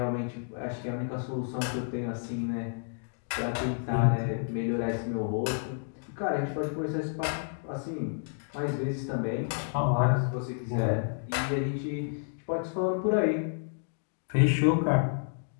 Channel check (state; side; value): silent; right; digital silence